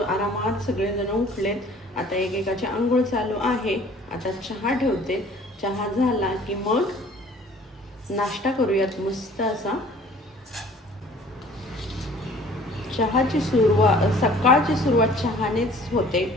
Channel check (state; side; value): normal; both; correlation 0.52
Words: सगळेजण उठलेत. आता एकेकाची आंघोळ चालू आहे. आता चहा ठेवते. चहा झाला की मग नाश्ता करूयात मस्त असा. चहाची सकाळची सुरुवात चहानेच होते.